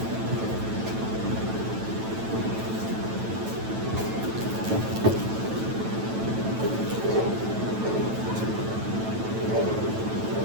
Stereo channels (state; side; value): late; left; 9.1 ms